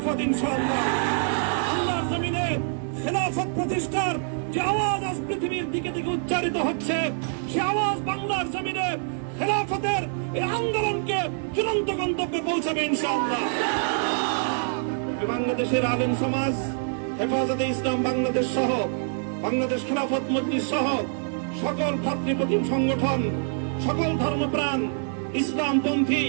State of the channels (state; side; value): silent; left; 61 dB below the other